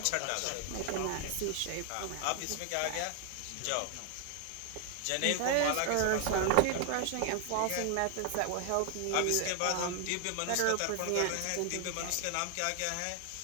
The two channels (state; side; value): different; both; correlation 0.00